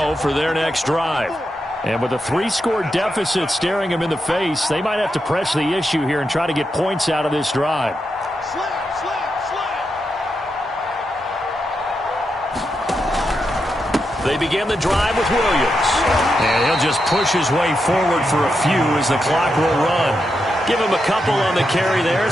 for their next drive. And with a 3-score deficit staring them in the face, they might have to press the issue here and try to get points out of this drive. They begin the drive with Williams. And he'll just push his way forward for a few as the clock will run. Give him a couple on the carry there,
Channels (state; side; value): normal; both; correlation 0.85